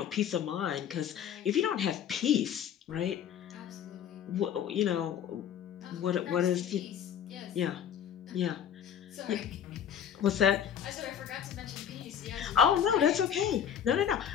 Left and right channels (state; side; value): quieter; right; 9.1 dB